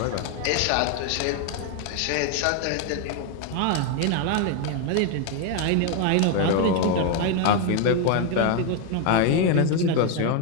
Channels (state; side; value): different; both; correlation 0.01